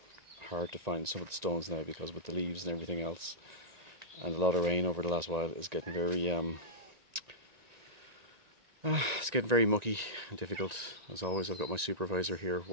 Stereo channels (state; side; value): late; left; 1.9 ms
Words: hard to find some of the stones now, because with the leaves and everything else and a lot of rain over the last while, it's getting very it's getting very mucky and difficult. As always, I've got my supervisor here